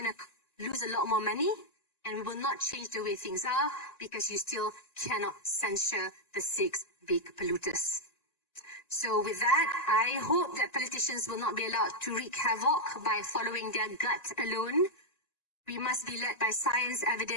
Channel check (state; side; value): late; right; 1.9 ms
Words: to lose a lot more money and we will not change the way things are because you still cannot censure the 6 big polluters. So with that, I hope that politicians will not be allowed to wreak havoc by following their gut alone. We must be led by science,